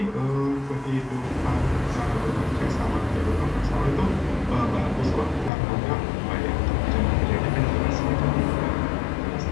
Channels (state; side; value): drops out; right; at 5.5 s